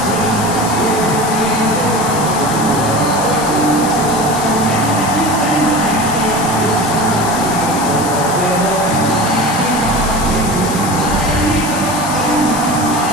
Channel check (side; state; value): left; noise; hiss, 8 dB below the sound